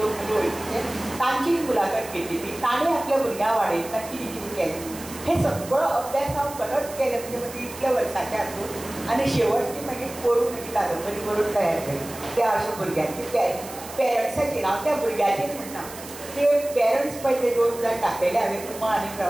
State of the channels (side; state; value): right; noise; hiss, 14 dB below the sound